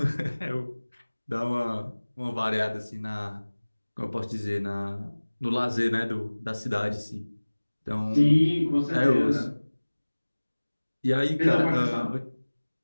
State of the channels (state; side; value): inverted; both; correlation -1.00